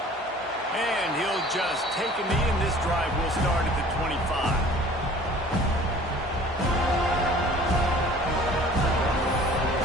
And he'll just take a knee, and this drive will start at the 25.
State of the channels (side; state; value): both; normal; correlation 0.48